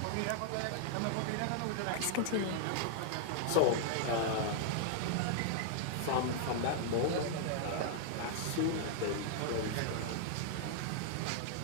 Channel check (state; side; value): different; both; correlation 0.00